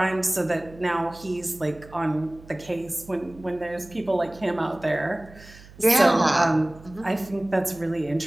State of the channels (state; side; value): noise; right; hum, 21 dB below the sound